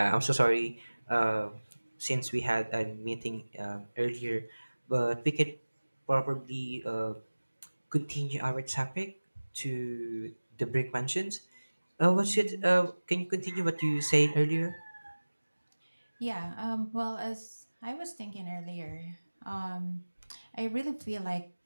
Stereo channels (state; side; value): inverted; both; correlation -1.00